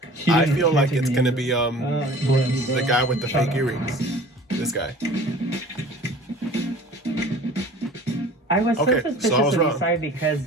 He I didn't- feel he like didn't it's take gonna me be in. the guy with the fake earrings. This guy. I was so Okay, suspicious so I was of wrong. Isai because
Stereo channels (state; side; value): normal; both; correlation 0.44